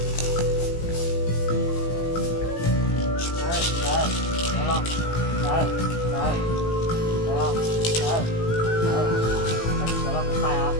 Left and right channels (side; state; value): right; late; 18 ms